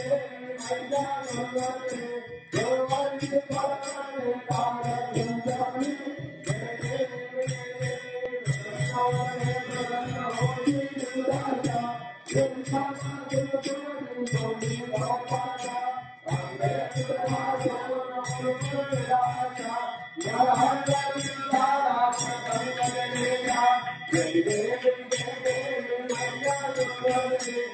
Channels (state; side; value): identical; both; correlation 1.00